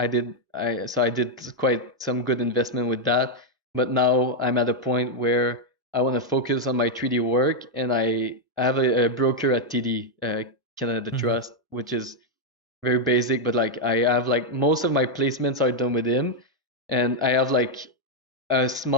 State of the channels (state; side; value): normal; both; correlation -0.01